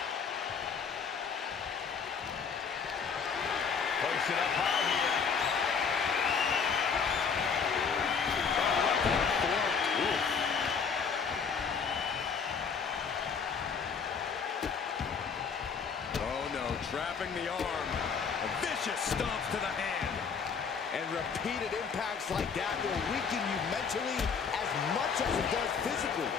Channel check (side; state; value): right; quieter; 6.0 dB